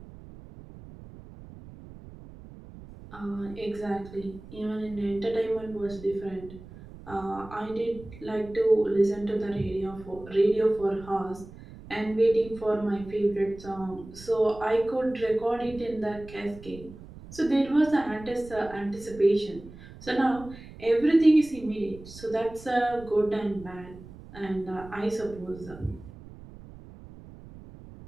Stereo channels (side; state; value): right; noise; rumble, 17 dB below the sound